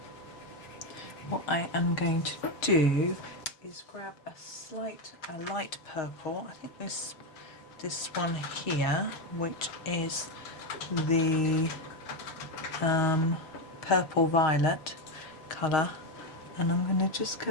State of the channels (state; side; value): late; right; 6.4 ms